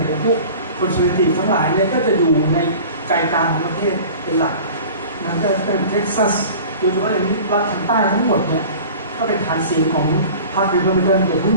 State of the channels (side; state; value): both; inverted; correlation -0.40